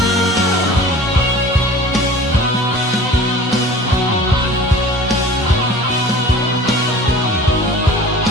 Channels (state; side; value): normal; both; correlation 0.43